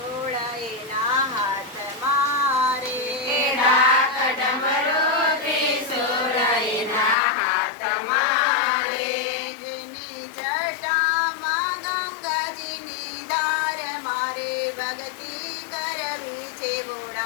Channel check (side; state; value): right; drops out; at 7.2 s